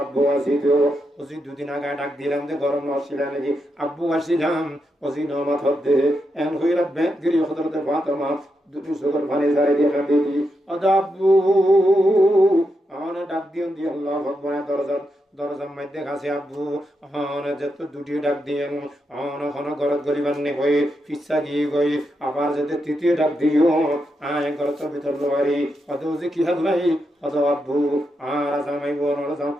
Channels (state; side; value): normal; both; correlation 0.84